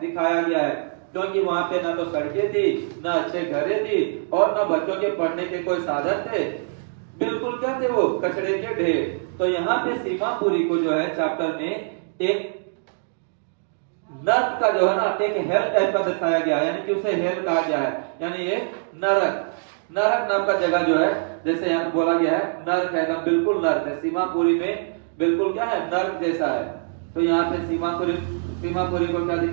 गया है, क्योंकि वहां पे ना तो सड़कें थी, ना अच्छे घरें थी और ना बच्चों के पढ़ने के कोई साधन थे, बिल्कुल क्या थे वो? कचड़े के ढेर। तो यहाँ पे सीमापुरी को जो है चैप्टर में एक नर्क का जो है ना एक हेल टाइप का दर्शाया गया है, यानी कि उसे हेल कहा गया है, यानी ये नरक नाम का जगह जो है, जैसे यहाँ बोला गया है नर्क है, बिल्कुल नर्क है। सीमापुरी में बिल्कुल क्या है? नर्क जैसा है। तो यहाँ पे सीमापुरी को क्या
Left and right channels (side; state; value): left; silent; digital silence